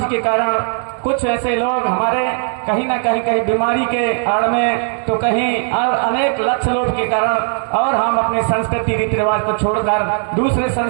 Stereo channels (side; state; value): left; silent; 56 dB below the other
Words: के कारण कुछ ऐसे लोग हमारे कहीं ना कहीं बीमारी के आड़ में, तो कहीं अनेक लक्ष्य लोभ के कारण, और हम अपने संस्कृति रीति रिवाज को छोड़कर दूसरे